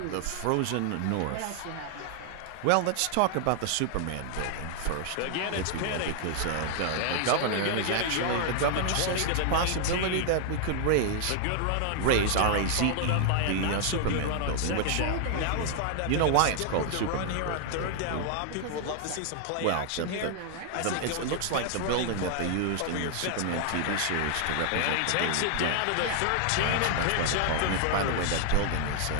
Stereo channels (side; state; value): both; different; correlation 0.00